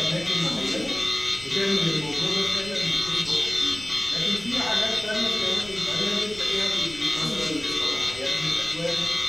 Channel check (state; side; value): noise; left; rumble, 20 dB below the sound